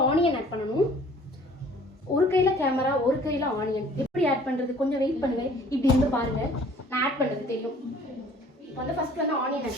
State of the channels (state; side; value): normal; both; correlation 0.53